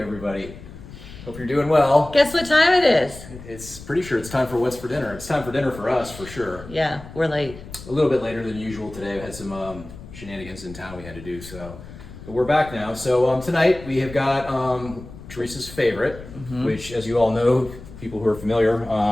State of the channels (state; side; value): noise; left; rumble, 15 dB below the sound